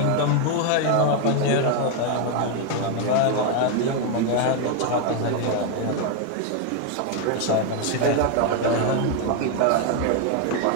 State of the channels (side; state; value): both; different; correlation 0.01